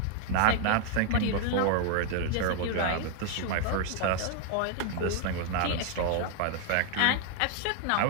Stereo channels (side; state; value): both; different; correlation 0.00